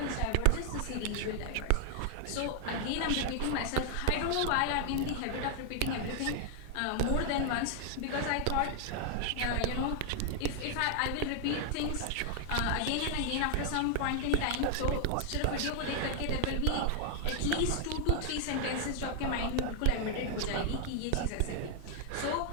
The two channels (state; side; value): different; both; correlation 0.00